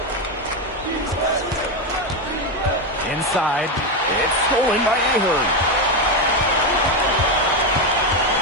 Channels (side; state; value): both; normal; correlation 0.10